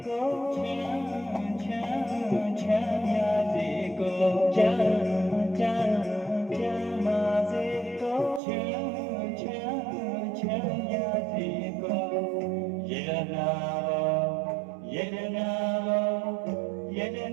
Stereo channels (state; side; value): drops out; left; at 8.4 s